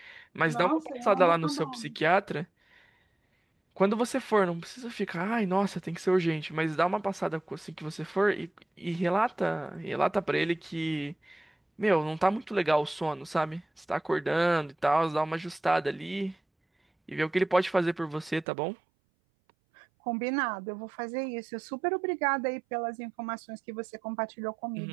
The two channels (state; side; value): drops out; left; at 18.4 s